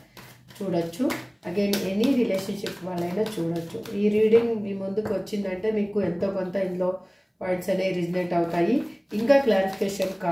చూడొచ్చు. అగైన్ ఎనీ రిలేషన్షిప్ వాళ్ళైనా చూడొచ్చు. ఈ రీడింగ్ మీ ముందుకు వచ్చిందంటే మీకు ఎంతో కొంత ఇందులో పాయింట్స్ అనేవి రిజనేట్ అవుతాయి. ఇంకా క్లారిఫికేషన్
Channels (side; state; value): both; identical; correlation 1.00